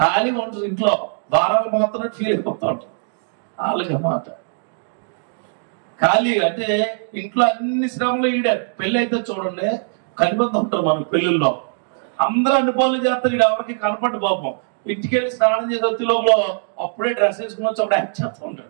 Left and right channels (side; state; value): left; silent; 64 dB below the other